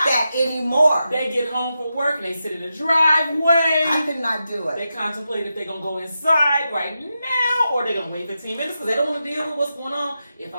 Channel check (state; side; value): inverted; both; correlation -0.89